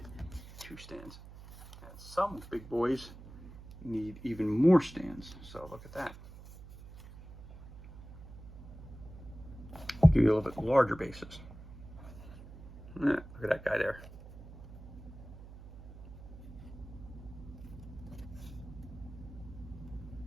two stands. And some big boys need even more stands. So look at that. Give you a little bit larger bases. Yeah, look at that guy there.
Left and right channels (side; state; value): right; noise; hum, 15 dB below the sound